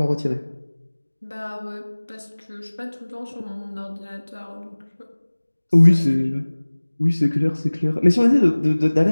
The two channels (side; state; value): both; inverted; correlation -1.00